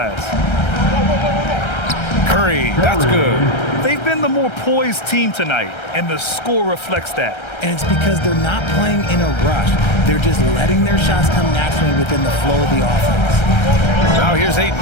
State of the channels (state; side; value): late; right; 1.3 ms